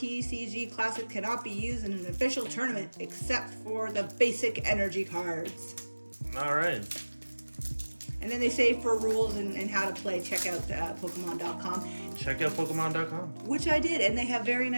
Classic cannot be used in an official tournament except for the basic energy cards. All right. And then they say for rules and how to play, check out Pokemon.com. Check out Pokemon.com. Which I did, and they have very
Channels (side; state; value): both; inverted; correlation -1.00